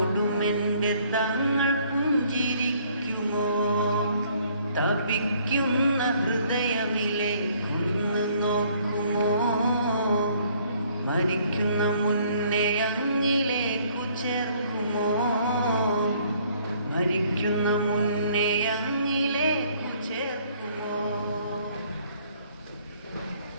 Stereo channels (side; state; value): both; inverted; correlation -0.62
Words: എൻ്റെ തങ്ങൾ പുഞ്ചിരിക്കുമോ? തപിക്കുന്ന ഹൃദയമിലേക്കൊന്ന് നോക്കുമോ? മരിക്കുന്ന മുന്നേ അങ്ങിലേക്കു ചേർക്കുമോ? മരിക്കുന്ന മുന്നേ അങ്ങിലേക്കു ചേർക്കുമോ?